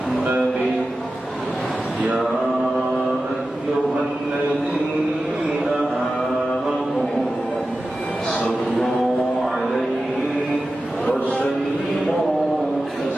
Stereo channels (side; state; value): both; normal; correlation 0.94